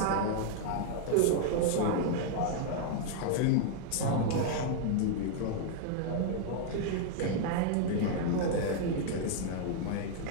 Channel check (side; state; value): both; different; correlation 0.00